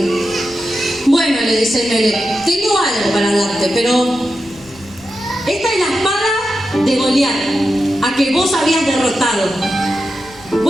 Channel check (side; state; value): left; noise; rumble, 24 dB below the sound